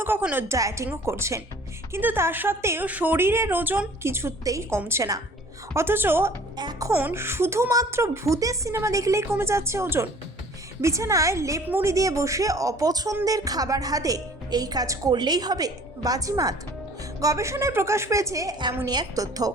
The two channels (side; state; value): both; normal; correlation 0.50